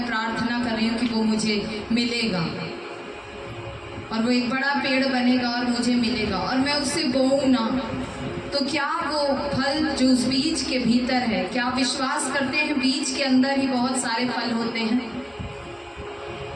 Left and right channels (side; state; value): both; identical; correlation 1.00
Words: प्रार्थना कर रही हूँ कि वो मुझे मिलेगा और वो एक बड़ा पेड़ बनेगा और मुझे मिलेगा, और मैं उसे बोऊं ना, तो क्या वो फल जो उस बीज के भीतर है, क्या विश्वास करते हैं बीज के अंदर ही बहुत सारे फल होते हैं?